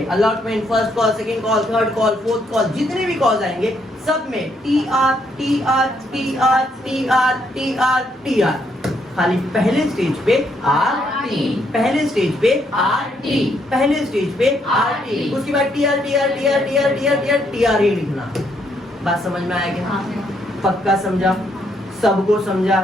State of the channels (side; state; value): both; normal; correlation 0.73